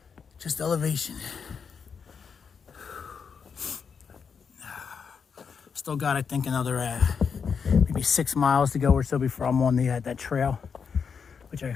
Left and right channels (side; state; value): right; quieter; 6.2 dB